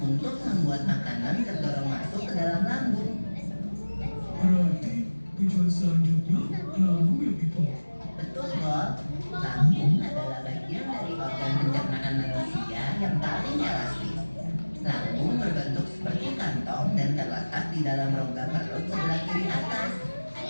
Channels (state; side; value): inverted; both; correlation -1.00